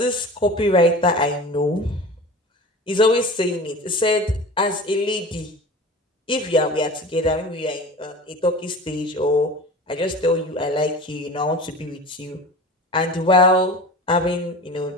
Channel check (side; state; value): both; normal; correlation 0.36